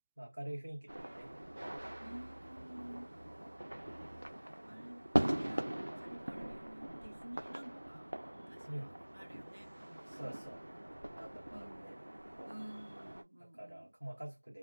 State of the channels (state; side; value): inverted; both; correlation -1.00